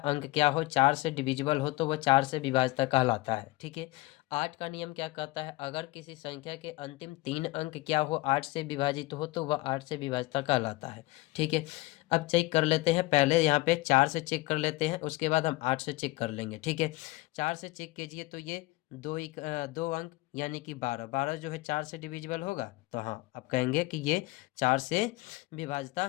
अंक क्या हो, 4 से डिविजिबल हो, तो वह 4 से विभाज्यता कहलाता है। ठीक है, 8 का नियम क्या कहता है, अगर किसी संख्या के अंतिम 3 अंक क्या हो, 8 से विभाजित हो, तो वह 8 से विभाज्यता कहलाता है। ठीक है, अब चेक कर लेते हैं, पहले यहाँ पे 4 से चेक कर लेते हैं, उसके बाद हम 8 से चेक कर लेंगे। ठीक है, 4 से चेक कीजिए तो ये 2 अंक यानी कि 12, 12 जो है 4 से डिविजिबल होगा, तो हाँ आप कहेंगे कि ये 4 से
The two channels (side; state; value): right; quieter; 20.1 dB